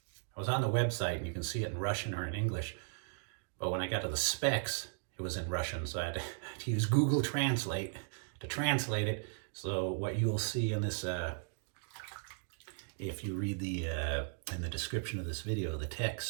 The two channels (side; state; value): left; silent; digital silence